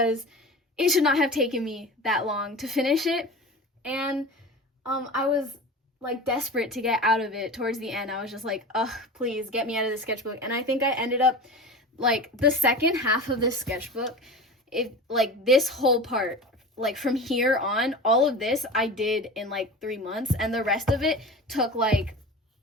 it should not have taken me that long to finish it. And I was like desperate to get out of it towards the end. I was just like, ugh, please get me out of the sketchbook. And I think I ended up like the second half of this sketchbook, like this whole part, like from here on, all of this I did in like 3 months, and the rest of it took like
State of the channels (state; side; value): normal; both; correlation 0.32